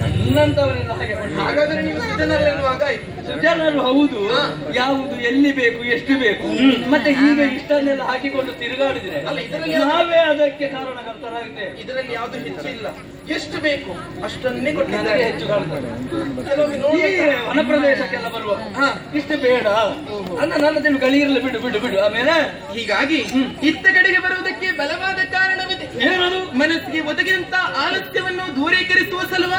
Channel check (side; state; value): both; identical; correlation 1.00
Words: ನನ್ನಂತವರೆಲ್ಲ ಹಾಗೆ ಮಾಡ್ತಾರೆ. ಹಾಗಾದ್ರೆ ನೀವು ಸಿದ್ಧನಲ್ಲೆನ್ನುವಾಗ ಆಯ್ತು. ಜನರು ಹೌದು, ಯಾವುದು ಎಲ್ಲಿ ಬೇಕು ಎಷ್ಟು ಬೇಕು, ಮತ್ತೆ ಈಗ ಇಷ್ಟನ್ನೆಲ್ಲ ಹಾಕಿಕೊಂಡು ತಿರುಗಾಡಿದ್ರೆ ಅಲ್ಲ, ಇದರಲ್ಲಿ ನಾವೇ ಅದಕ್ಕೆ ಕಾರಣಕರ್ತರಾಗಿದ್ದೇವೆ. ಇದರಲ್ಲಿ ಯಾವ್ದು ಹೆಚ್ಚಿಲ್ಲ, ಎಷ್ಟು ಬೇಕು ಅಷ್ಟನ್ನೇ ನನಗೆ ಕೊಟ್ಟಿದ್ದಾರೆ. ಹೆಚ್ಚು ಕಾಣ್ತದೆ. ಕೆಲವೊಮ್ಮೆ ಈ ನೋಡಿ ವನ ಪ್ರದೇಶಕ್ಕೆಲ್ಲ ಬರುವ ಇಷ್ಟು ಬೇಡ ಅನ್ನ ನನ್ನ ತಿಳು ಗಳಿರಲಿ, ಬಿಡು ಬಿಡು ಬಿಡು. ಆಮೇಲೆ ಹೀಗಾಗಿ ಇತ್ತ ಕಡೆಗೆ ಬರುವುದಕ್ಕೆ ಬಲವಾದ ಕಾರಣವಿದೆ. ಏನದು? ಮನಸ್ಸಿಗೆ ಒದಗಿದಂತ ಆಲಸ್ಯವನ್ನು ದೂರೀಕರಿಸುವ